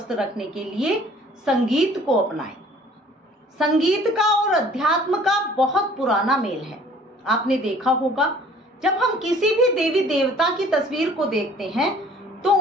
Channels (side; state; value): both; normal; correlation 0.53